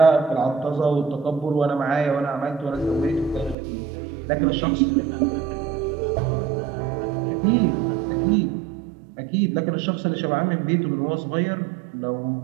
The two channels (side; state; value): left; drops out; at 3.6 s